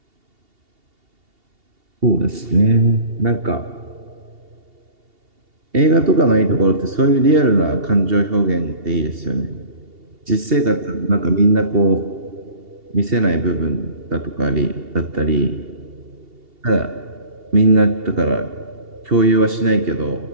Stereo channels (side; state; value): left; late; 2.8 ms